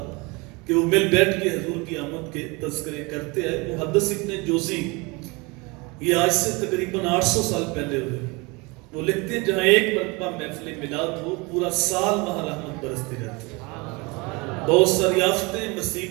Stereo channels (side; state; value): left; quieter; 26.7 dB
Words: کہ وہ مل بیٹھ کے حضور کی آمد کے تذکرے کرتے ہیں. محدث ابن جوزی یہ آج سے تقریباً 800 سال پہلے ہوئے. وہ لکھتے ہیں جہاں ایک مرتبہ محفل میلاد ہو پورا سال وہاں رحمت برستی رہتی ہے. بہت ساری آفتیں